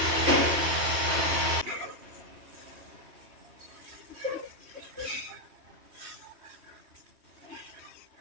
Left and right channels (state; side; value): late; left; 3.2 ms